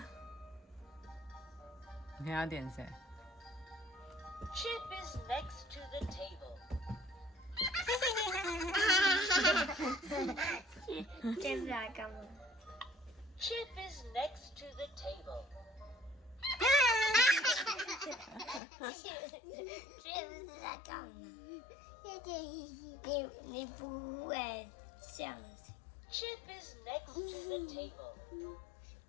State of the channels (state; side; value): drops out; right; at 18.6 s